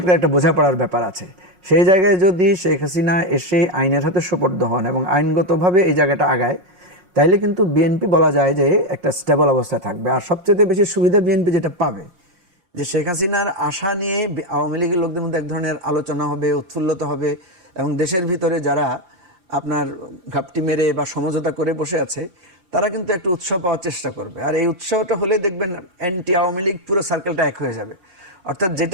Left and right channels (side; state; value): left; late; 5.5 ms